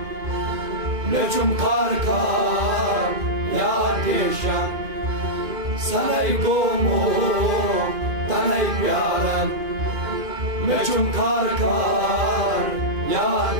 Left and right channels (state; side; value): late; left; 2.5 ms